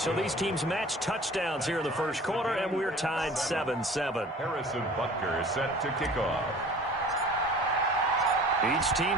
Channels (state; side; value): normal; both; correlation 0.45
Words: these teams match touchdowns here in the first quarter, and we're tied 7-7. Harrison Butker is set to kick off. Each